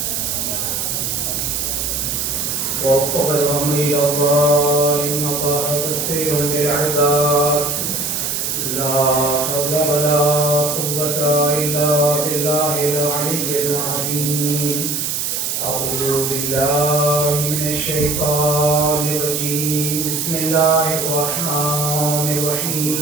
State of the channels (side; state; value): right; noise; hiss, 1 dB below the sound